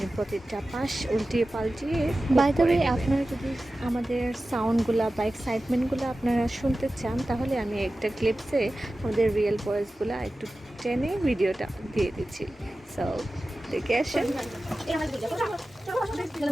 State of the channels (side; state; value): both; normal; correlation 0.95